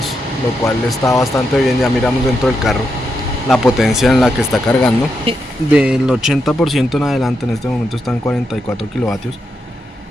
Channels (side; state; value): both; normal; correlation 0.83